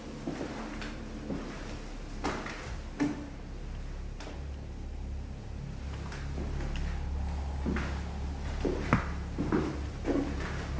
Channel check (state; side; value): identical; both; correlation 1.00